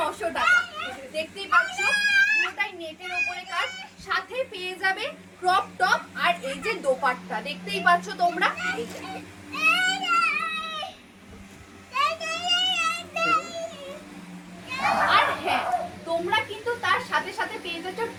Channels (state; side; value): identical; both; correlation 1.00